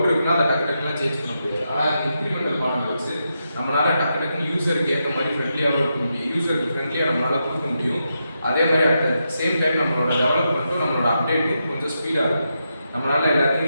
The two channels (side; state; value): both; inverted; correlation -0.85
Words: இருக்குன்னா அதை டக்குலாம் சேஞ்ச் பண்ண முடியாது. ஆனால் இன்க்ரிமெண்டல் மாடல் வச்சு நம்மளால் டக்குன்னு யூஸருக்கு ஏற்ற மாதிரி ஃப்ரெண்ட்லியாகவும் இருக்க முடியும். யூஸருக்கு ஃப்ரெண்ட்லியாக நம்மளால் கொடுக்க முடியும். அதே மாதிரி அட் சேம் டைம் நம்மளோட டெவலப்மெண்ட்டும் நம்மளோட அப்டேட்டும் கொஞ்சம் ஸ்பீடாக இருக்கும். நம்மளால்